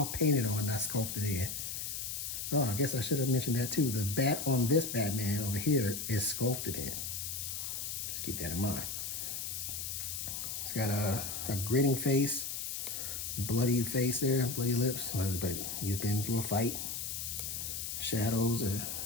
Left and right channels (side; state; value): left; noise; hiss, 4 dB below the sound